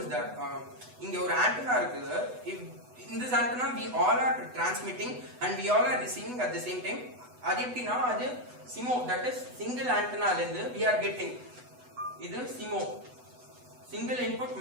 is that இங்க ஒரு ஆண்டனா இருக்குது. in this antenna we all are transmitting and we all are receiving at the same time. அது எப்படின்னா, அது SIMO, that is single antenna ல இருந்து we are getting, இது SIMO, single input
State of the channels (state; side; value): late; left; 8.1 ms